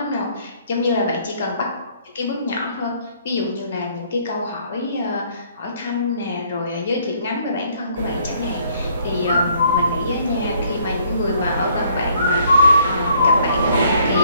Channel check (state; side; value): inverted; both; correlation -0.64